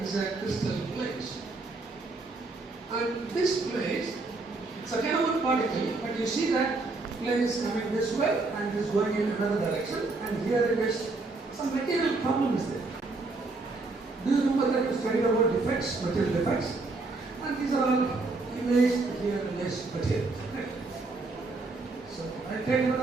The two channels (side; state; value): left; quieter; 3.5 dB